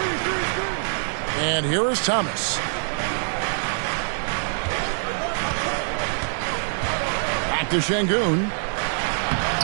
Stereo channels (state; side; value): silent; left; 62 dB below the other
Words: And here is Thomas. To Şengün.